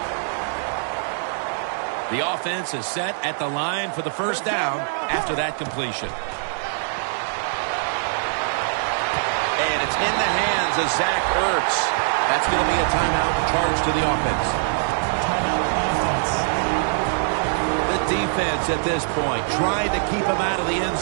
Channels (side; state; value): left; silent; 63 dB below the other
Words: The offense is set at the line for the first down after that completion. And it's in the hands of Zach Ertz. That's going to be a timeout charge to the offense. Defense at this point trying to keep him out of the end